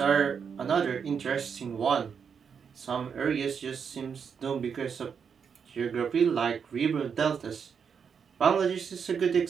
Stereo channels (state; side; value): quieter; left; 6.7 dB